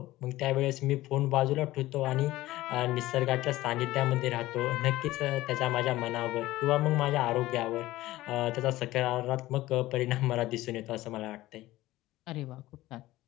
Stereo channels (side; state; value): right; quieter; 17.0 dB